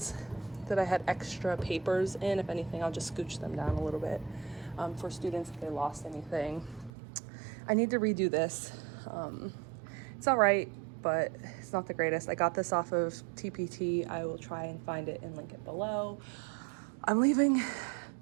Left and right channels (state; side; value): drops out; left; at 6.9 s